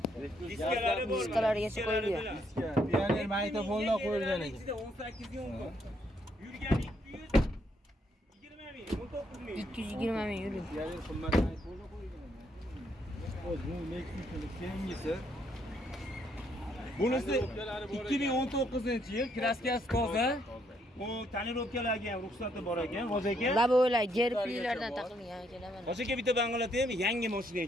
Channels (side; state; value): both; normal; correlation 0.72